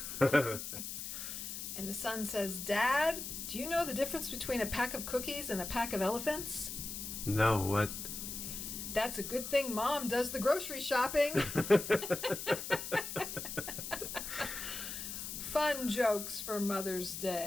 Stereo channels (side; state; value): left; noise; hiss, 6 dB below the sound